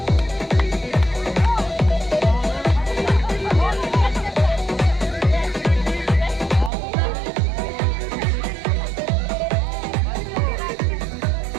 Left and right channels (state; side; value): drops out; left; at 6.7 s